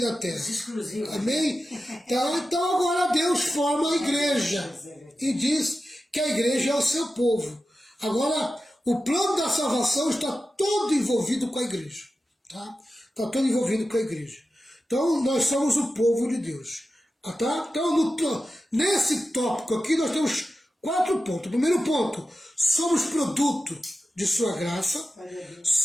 terra. Exclusivo. Amém? Então agora Deus forma a igreja e diz que a igreja é o seu povo. Agora, o plano da salvação está todo envolvido com a igreja. Tá? Está todo envolvido com a igreja. Então, nós somos o povo de Deus. Tá? Então, nesse tópico aqui, nós temos 4 pontos. Primeiro ponto, somos produto de sua graça,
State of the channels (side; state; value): both; normal; correlation 0.93